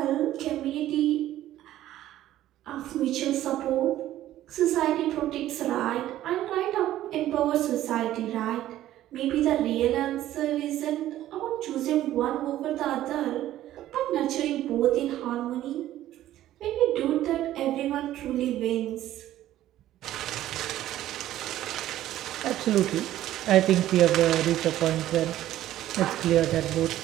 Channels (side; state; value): left; quieter; 13.5 dB